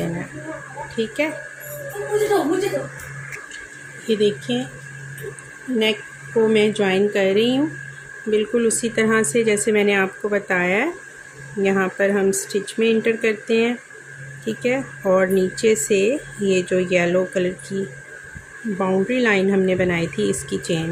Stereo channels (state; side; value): identical; both; correlation 1.00